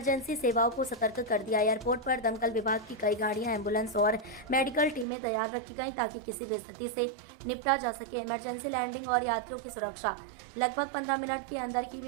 सेवाओं को सतर्क कर दिया। एयरपोर्ट पर दमकल विभाग की कई गाड़ियां, एम्बुलेंस और मेडिकल टीमें तैयार रखी गईं ताकि किसी भी स्थिति से निपटा जा सके। इमरजेंसी लैंडिंग और यात्रियों की सुरक्षा। लगभग 15 मिनट के अंदर ही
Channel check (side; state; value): left; drops out; at 5.1 s